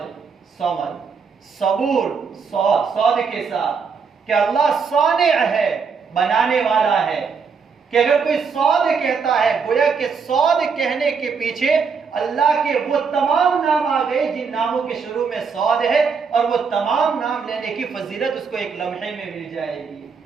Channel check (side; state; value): left; quieter; 5.6 dB